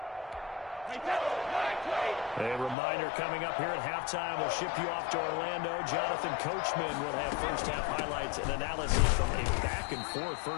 A reminder coming up here at halftime. We'll ship you off to Orlando. Jonathan Coachman will have first-half highlights and analysis from a back-and-forth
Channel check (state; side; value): drops out; right; at 2.8 s